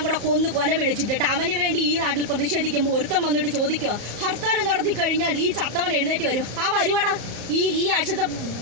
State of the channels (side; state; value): left; late; 34 ms